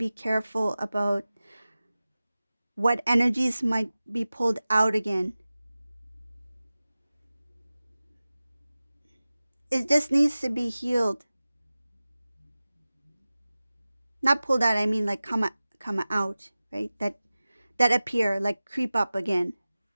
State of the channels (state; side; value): inverted; both; correlation -0.97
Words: careful about what energies might be pulled out again. It just needs to be healed. Not pulled out, I mean like come out, right? That appear, like creep up again.